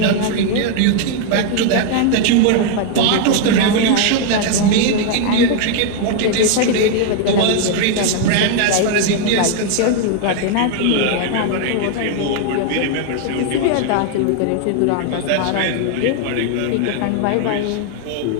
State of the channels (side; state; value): both; different; correlation 0.00